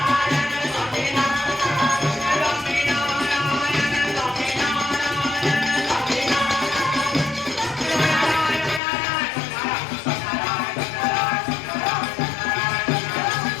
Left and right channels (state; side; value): drops out; right; at 8.8 s